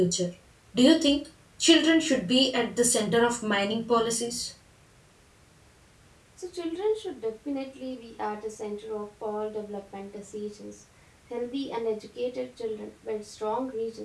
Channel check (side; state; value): both; identical; correlation 1.00